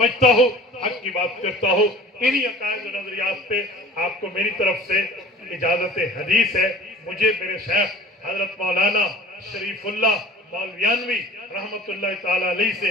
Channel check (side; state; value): both; normal; correlation 0.44